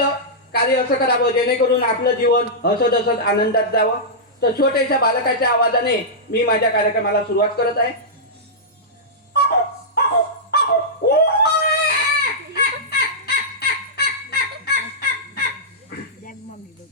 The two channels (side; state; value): both; normal; correlation -0.12